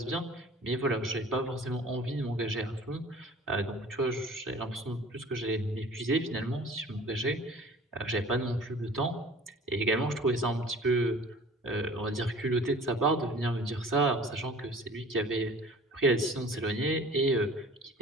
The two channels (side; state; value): both; normal; correlation 0.46